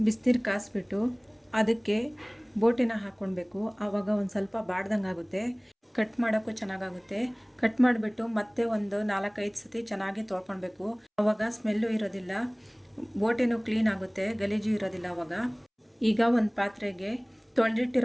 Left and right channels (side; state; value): both; identical; correlation 1.00